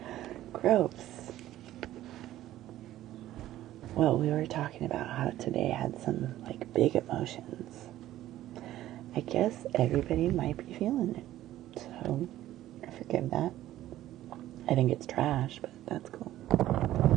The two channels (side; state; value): left; quieter; 13.9 dB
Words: Gross. Well, we were talking about how today had some, like, big emotions. I guess everybody might be feeling it. So, I forgive that. I think it's trash, but that's cool.